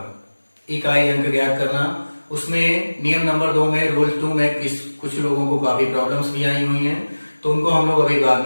इकाई अंक ज्ञात करना, उसमें नियम नंबर 2 में रूल 2 में कुछ लोगों को काफी प्रॉब्लम्स भी आई हुई हैं, तो उनको हम लोग अभी बाद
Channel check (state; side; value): inverted; both; correlation -1.00